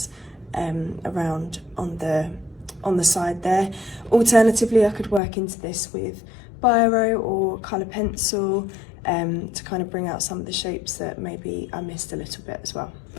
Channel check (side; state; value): right; drops out; at 5.2 s